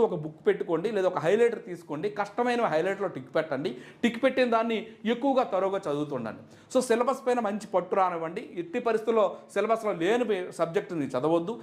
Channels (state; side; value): identical; both; correlation 1.00